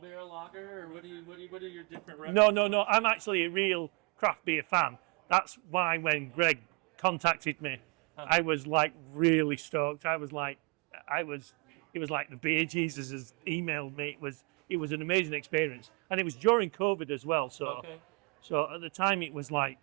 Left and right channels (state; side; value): quieter; left; 33.2 dB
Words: beer lager, or what are your different No. I'm actually a real craft beer fan. That's why when Greg contacted me, I was like really stoked. It was like the Beer Jesus has emailed me. It was an amazing experience, and it was during COVID as well. So. Okay. So at the time, it was like